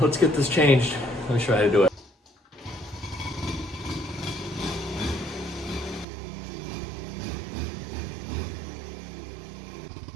get this changed. Let me show you how to do it.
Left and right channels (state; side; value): drops out; left; at 6.1 s